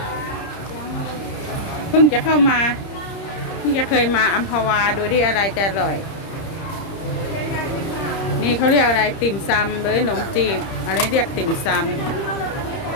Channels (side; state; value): right; late; 30 ms